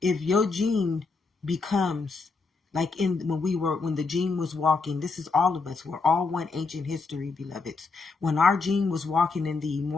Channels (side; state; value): right; quieter; 4.2 dB